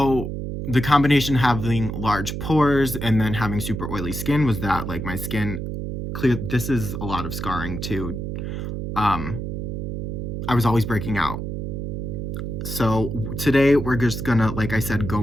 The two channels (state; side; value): noise; right; hum, 4 dB below the sound